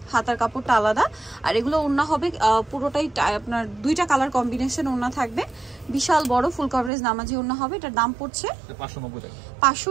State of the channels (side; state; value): left; drops out; at 6.9 s